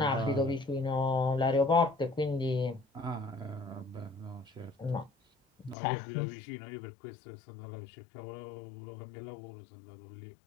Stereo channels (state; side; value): drops out; right; at 5.8 s